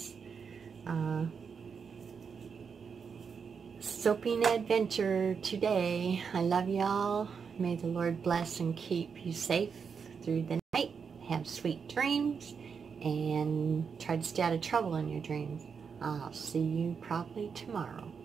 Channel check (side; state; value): left; quieter; 6.1 dB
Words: soaping adventure today. I love y'all. May the Lord bless and keep you safe through the night. Have sweet dreams and try to stay out of trouble in your dreams. I'll see you probably tomorrow.